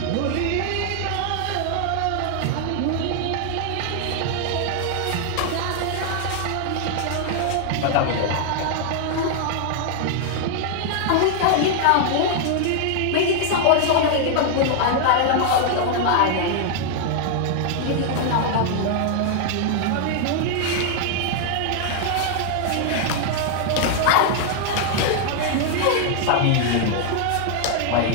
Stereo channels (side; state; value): both; different; correlation 0.00